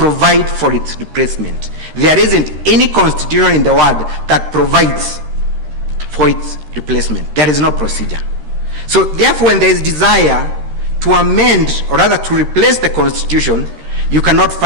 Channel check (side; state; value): left; late; 13 ms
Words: for its replacement. There isn't any constitution in the world that provides for its replacement. There is no procedure. So therefore, when there is desire to amend, or rather to replace the constitution, you cannot